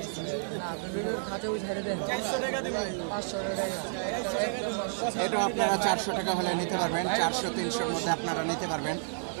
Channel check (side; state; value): left; silent; 57 dB below the other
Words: এটাও আপনারা 400 টাকা হলে নিতে পারবেন, 400-300-র মধ্যে আপনারা নিতে পারবেন।